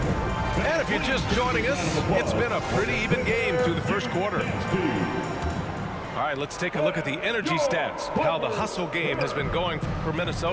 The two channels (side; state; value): both; identical; correlation 1.00